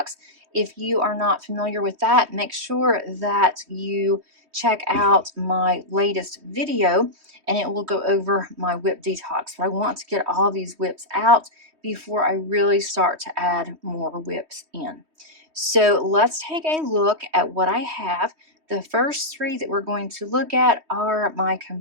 If you are not familiar with that, make sure that you check out my latest video and it will go over my WIP detox. But I want to get all these WIPs out before I really start to add more WIPs in. So let's take a look at what I have. The first three that we're going to look at are my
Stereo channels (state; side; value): late; left; 3.2 ms